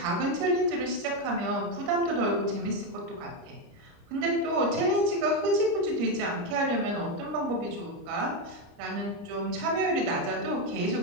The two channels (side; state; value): left; late; 29 ms